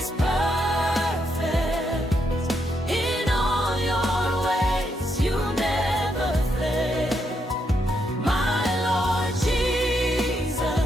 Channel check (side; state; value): both; normal; correlation 0.79